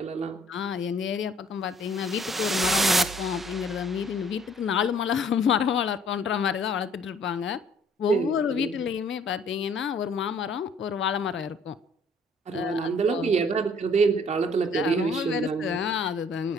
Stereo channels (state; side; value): normal; both; correlation 0.58